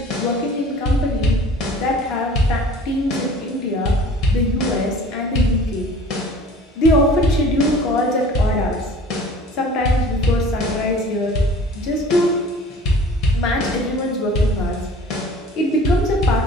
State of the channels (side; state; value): both; normal; correlation 0.46